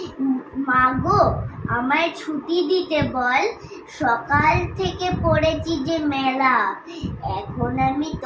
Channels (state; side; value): identical; both; correlation 1.00